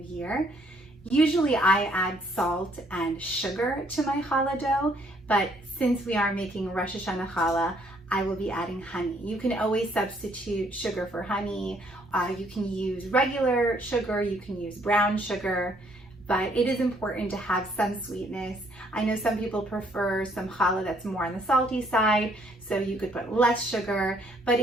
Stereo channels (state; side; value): normal; both; correlation 0.66